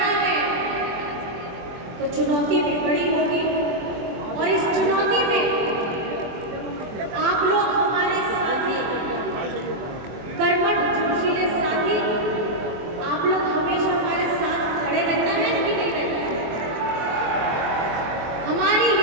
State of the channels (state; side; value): late; left; 23 ms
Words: है तो चुनौती भी बड़ी होगी। और इस चुनौती में आप लोग हमारे साथी, कर्मठ जोशीले साथी, आप लोग हमेशा हमारे साथ खड़े रहना है कि नहीं रहना है? हमारी